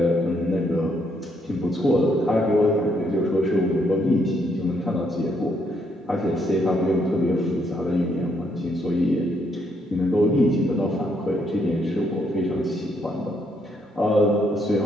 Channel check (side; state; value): both; normal; correlation 0.73